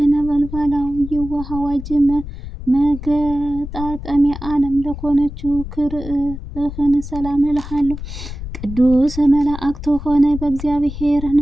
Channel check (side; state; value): left; noise; rumble, 10 dB below the sound